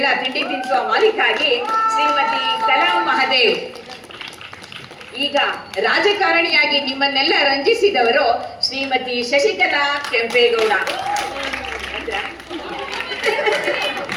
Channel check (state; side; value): identical; both; correlation 1.00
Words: ತಿಂಡಿ ತಿನ್ಸುವ ಮಾಲೀಕ ಆಗಿ ಶ್ರೀಮತಿ ಕಲಾ ಮಹದೇವ್. ಈಗ ರಾಜಕಾರಣಿಯಾಗಿ ನಿಮ್ಮನ್ನೆಲ್ಲ ರಂಜಿಸಿದವರು ಶ್ರೀಮತಿ ಶಶಿಕಲಾ ಕೆಂಪೇಗೌಡ.